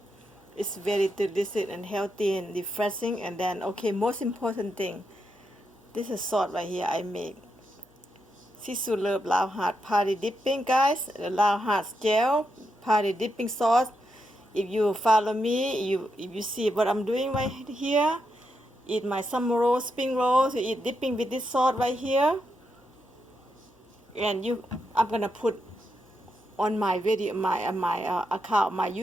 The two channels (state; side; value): normal; both; correlation 0.83